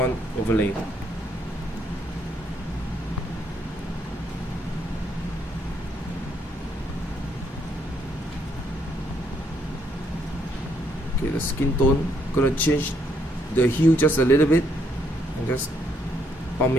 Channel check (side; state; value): both; normal; correlation 0.72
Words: overlay. Okay, the skin tone, gonna change the hue just a little bit and just pump